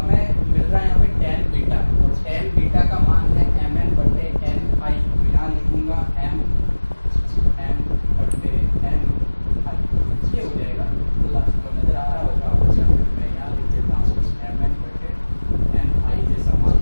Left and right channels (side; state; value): both; inverted; correlation -1.00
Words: मिल रहा है यहाँ पे tan बीटा और tan बीटा का मान है Mn बटे Ni, तो यहाँ लिखूंगा M बटे Ni, ये हो जाएगा। तो नजर आ रहा होगा आपको, या फिर मैं यहाँ लिख देता हूँ Mn बटे Ni जैसा मान